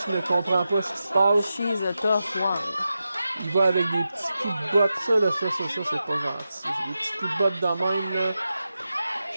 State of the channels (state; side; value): inverted; both; correlation -0.91